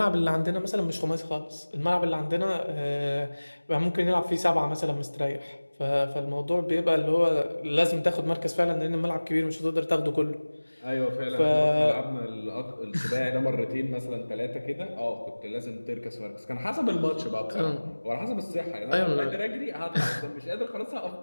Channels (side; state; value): both; inverted; correlation -1.00